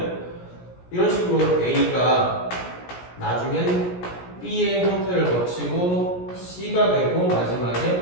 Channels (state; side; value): late; right; 17 ms